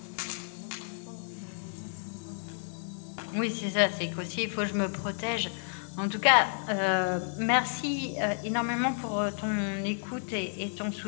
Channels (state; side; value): silent; right; 57 dB below the other